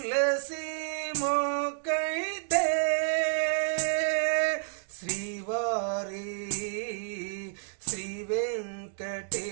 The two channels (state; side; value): silent; left; digital silence